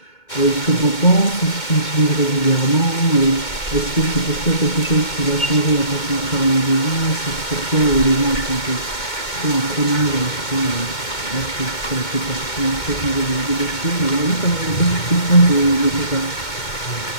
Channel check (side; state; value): right; late; 2.2 ms